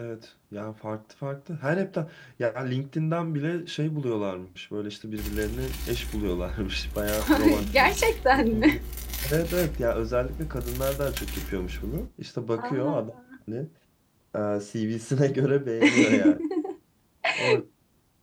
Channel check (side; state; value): both; identical; correlation 1.00